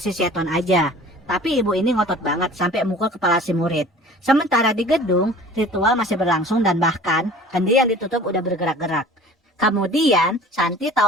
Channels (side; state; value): both; normal; correlation 0.45